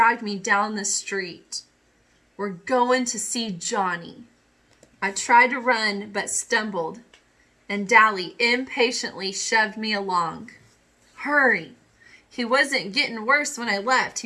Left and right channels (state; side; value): identical; both; correlation 1.00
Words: me down the street. "We're going to see Johnny." I tried to run but stumbled, and Dally impatiently shoved me along. "Hurry. He wasn't getting worse when I left.